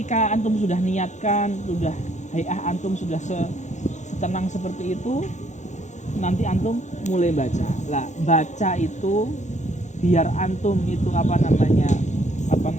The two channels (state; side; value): late; right; 0.34 ms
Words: antum sudah niatkan, sudah hayah antum sudah setenang seperti itu, nanti antum mulai baca. Lah, baca itu biar antum itu apa